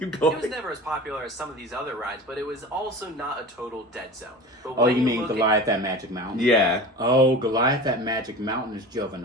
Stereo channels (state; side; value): normal; both; correlation 0.34